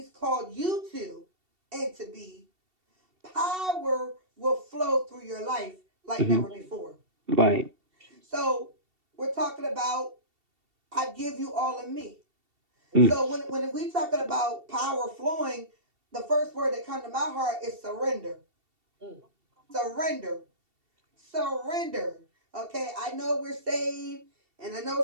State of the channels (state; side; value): late; left; 2.7 ms